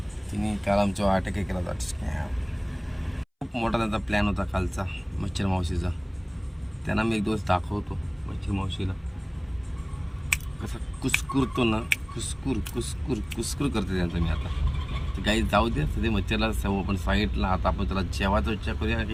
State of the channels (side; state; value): both; identical; correlation 1.00